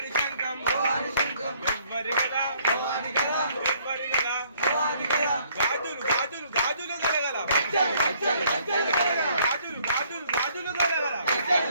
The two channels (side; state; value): both; inverted; correlation -0.63